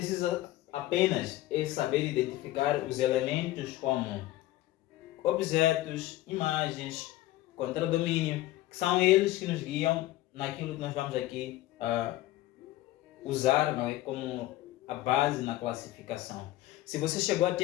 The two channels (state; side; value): quieter; right; 16.1 dB